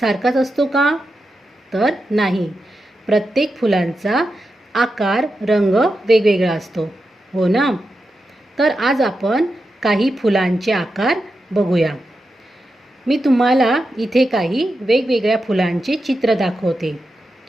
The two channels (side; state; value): both; normal; correlation 0.89